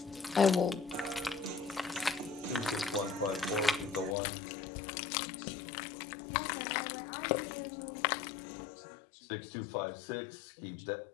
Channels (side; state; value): right; drops out; at 4.2 s